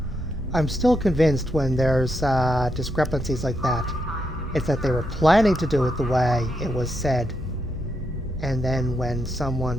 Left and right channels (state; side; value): normal; both; correlation 0.82